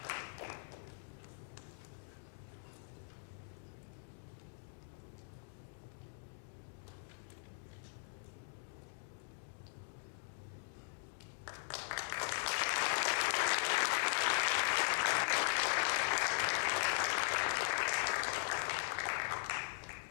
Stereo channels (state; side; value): silent; right; digital silence